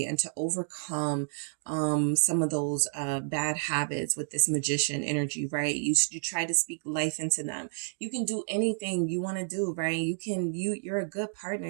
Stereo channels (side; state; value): left; silent; digital silence